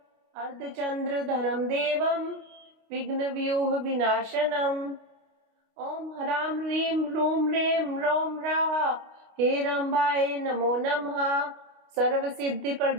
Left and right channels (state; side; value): late; left; 29 ms